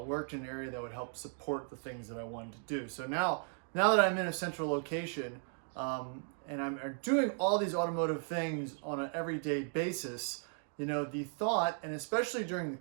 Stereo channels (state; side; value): silent; left; 54 dB below the other